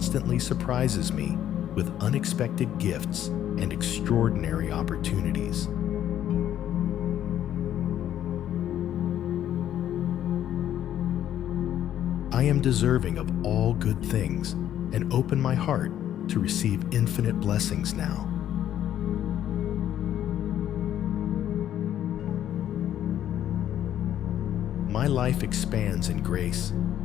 surprises me with unexpected gifts and extraordinary opportunities. I am deserving of all good things and open my heart to receive infinite blessings now. My life expands in grace,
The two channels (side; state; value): right; quieter; 11.1 dB